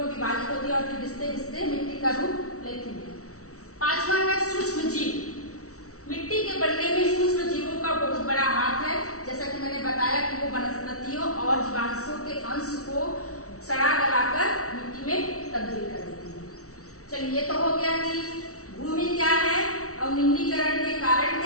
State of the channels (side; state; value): right; late; 0.64 ms